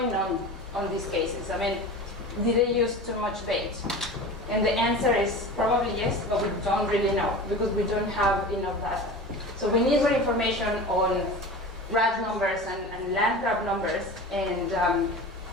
on these cases? I mean, did they use too much bait? And the answer is probably yes, but we don't really know because we don't have enough data. So we need more information on rat numbers and land crab numbers and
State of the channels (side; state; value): both; normal; correlation 0.33